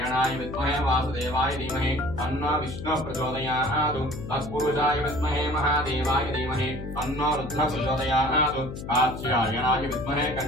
विद्महे वासुदेवाय धीमहि तन्नो विष्णुः प्रचोदयात्। तत्पुरुषाय विद्महे महादेवाय धीमहि तन्नो रुद्रः प्रचोदयात्। कात्यायनाय विद्महे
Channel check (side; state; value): left; noise; hum, 9 dB below the sound